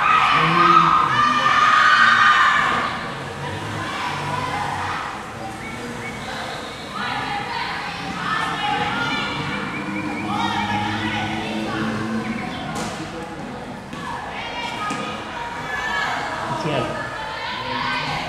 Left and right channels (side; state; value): both; identical; correlation 1.00